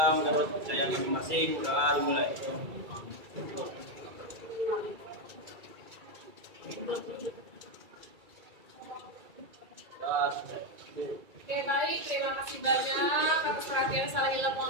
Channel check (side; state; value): left; late; 2.3 ms